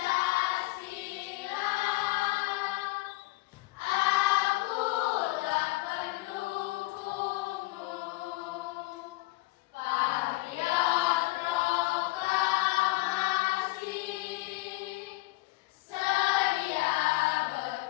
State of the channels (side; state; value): right; quieter; 20.7 dB